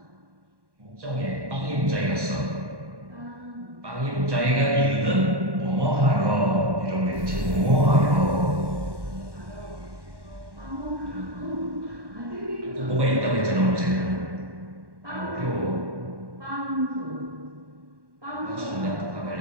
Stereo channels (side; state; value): left; late; 1.1 ms